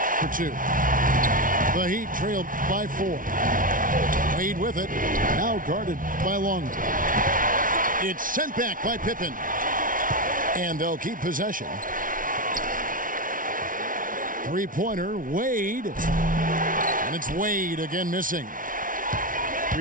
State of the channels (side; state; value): left; late; 0.39 ms